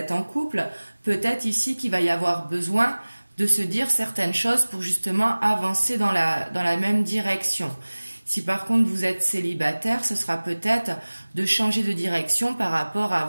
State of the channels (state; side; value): inverted; both; correlation -1.00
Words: en couple, peut-être ici qu'il va y avoir besoin de se dire certaines choses pour justement avancer dans la même direction. Si par contre vous êtes célibataire, ce sera peut-être de changer de direction par rapport à